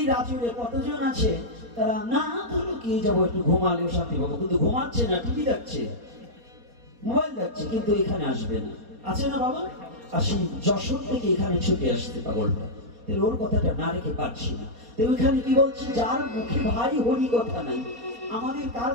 রাজরে কতজন আছে, তারা না ধরো কি যাবো একটু ঘুমালেও শান্তি পাবো, কিন্তু ঘুমাচ্ছে না, টিভি দেখছে, মোবাইল দেখছে, কিন্তু এখানে আসবে না, আছে না বাবা? আর সেই যশোর থেকে এখানে ছুটে আসতে পাগলটা, তাহলে ওর কথাটা না রেখে পারছি না। তো ওইখানে কি বলছে, যার মুখে ভাই হরি কথা নাই, আমাদের কার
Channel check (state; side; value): late; left; 4.2 ms